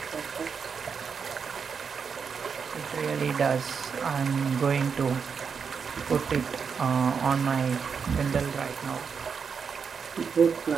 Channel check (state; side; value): quieter; left; 6.1 dB